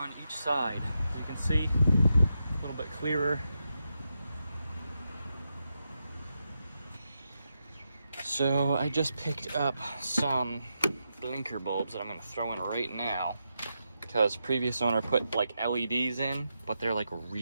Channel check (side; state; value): both; inverted; correlation -0.86